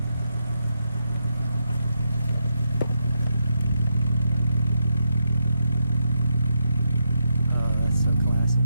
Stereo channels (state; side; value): inverted; both; correlation -0.83